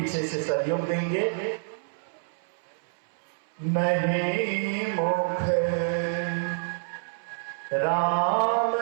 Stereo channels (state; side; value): silent; left; 60 dB below the other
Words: से सहयोग देंगे। नहीं मुख राम